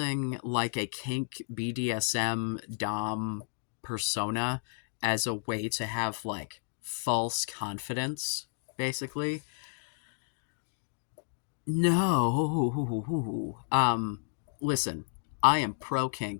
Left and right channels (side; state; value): right; silent; digital silence